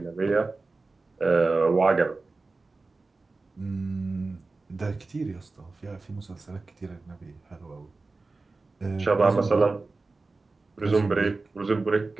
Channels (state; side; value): quieter; left; 3.6 dB